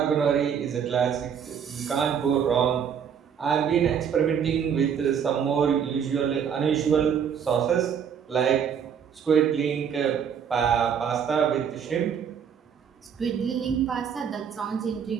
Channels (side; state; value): left; quieter; 7.7 dB